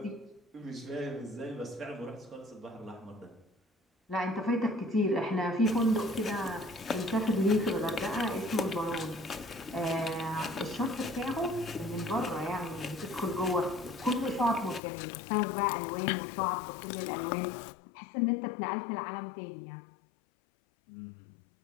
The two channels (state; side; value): drops out; right; at 14.8 s